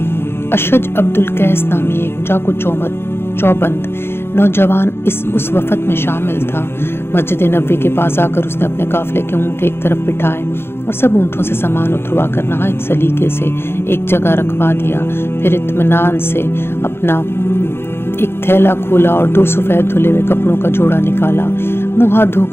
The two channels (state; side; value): late; right; 0.11 ms